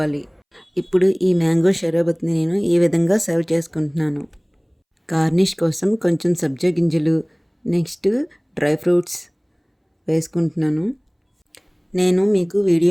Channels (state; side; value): identical; both; correlation 1.00